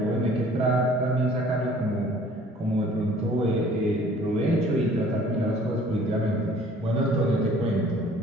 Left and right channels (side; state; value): both; normal; correlation 0.53